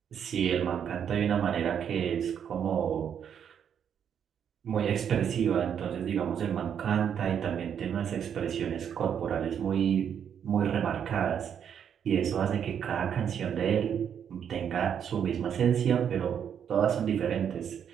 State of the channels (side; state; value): left; quieter; 8.3 dB